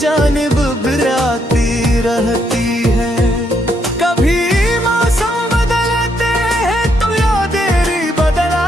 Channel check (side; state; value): both; normal; correlation 0.75